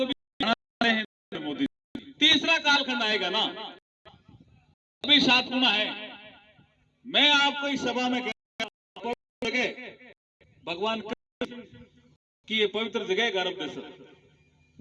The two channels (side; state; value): both; identical; correlation 1.00